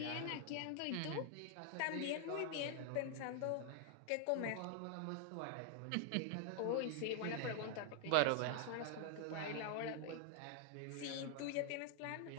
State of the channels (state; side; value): different; both; correlation 0.00